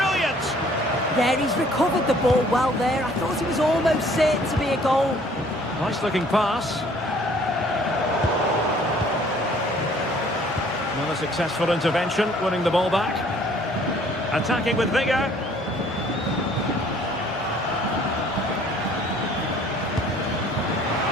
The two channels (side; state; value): both; normal; correlation 0.57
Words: There, he's recovered the ball well there. I thought it was almost certain to be a goal. Nice looking pass. Another successful intervention, winning the ball back. Attacking with vigour.